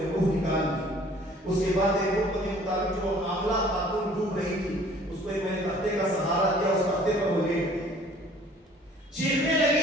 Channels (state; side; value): normal; both; correlation 0.54